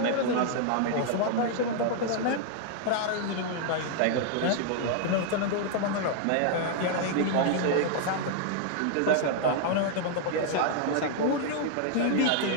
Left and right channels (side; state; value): both; different; correlation 0.00